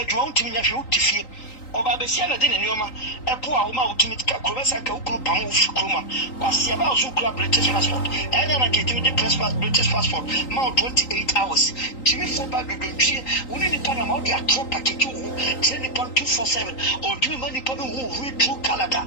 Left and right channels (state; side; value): late; right; 3.8 ms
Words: untimi nya hwe utifie oba be sia na de ne nyoma epo a wo ma utimi ka kurobesa ka ukuru pam wo fikroma kwasia ba so kura British passport ena na ketimi de British passport ma 28 hours timi fo ba do twie woni ni pana ma o dia trop package wo tini ni pan 247 utimi mani pan wo read through Canada.